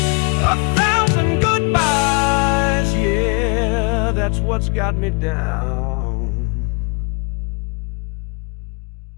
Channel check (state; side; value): quieter; right; 33.5 dB